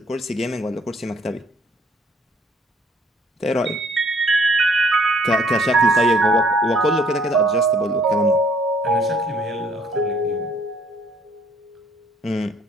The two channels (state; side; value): normal; both; correlation 0.62